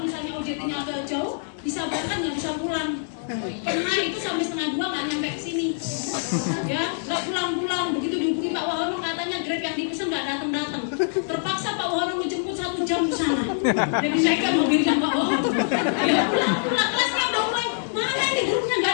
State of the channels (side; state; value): right; silent; digital silence